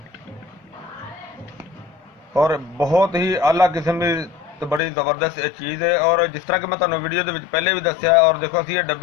और बहुत ही आला किस्म की तो बड़ी ज़बरदस्त चीज़ है। और जिस तरह कि मैं तुहानूं वीडियो दे विच पहले भी दस्सिया, और देखो असीं ये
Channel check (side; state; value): right; drops out; at 4.8 s